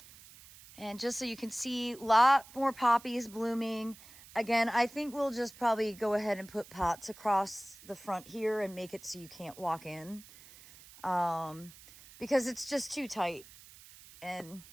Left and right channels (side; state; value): right; noise; hiss, 20 dB below the sound